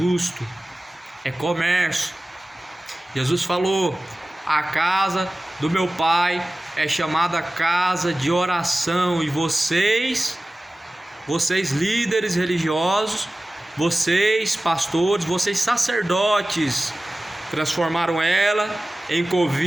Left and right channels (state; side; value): normal; both; correlation 0.97